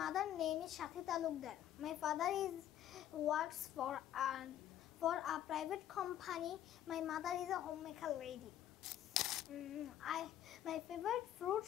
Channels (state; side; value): quieter; right; 11.5 dB